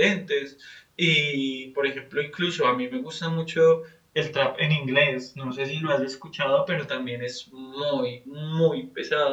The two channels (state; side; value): identical; both; correlation 1.00